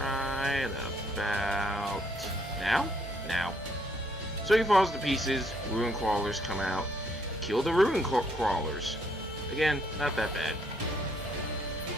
about now? Now. So he falls to pieces, ruin crawlers come out. Kill the ruin crawlers. Again, not that bad.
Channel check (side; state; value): both; normal; correlation 0.70